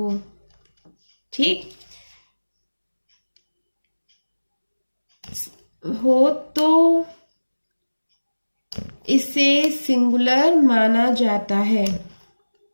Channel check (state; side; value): inverted; both; correlation -1.00